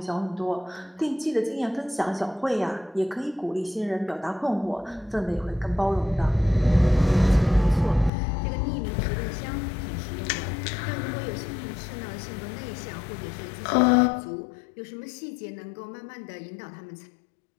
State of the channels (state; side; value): drops out; right; at 8.1 s